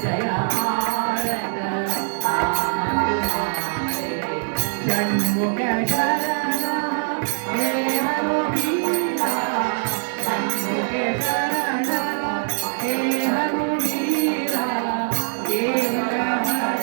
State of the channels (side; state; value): left; silent; 64 dB below the other